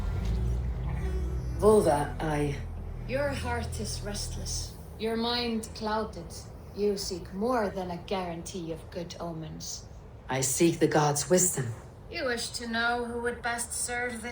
Volva, Your heart is restless. Your mind clouded. You seek more than a guarantee of good omens. I seek the gods' wisdom. You wish to know who would best serve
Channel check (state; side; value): identical; both; correlation 1.00